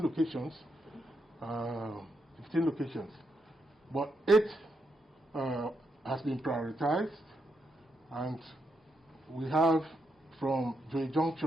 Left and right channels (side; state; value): both; normal; correlation 0.81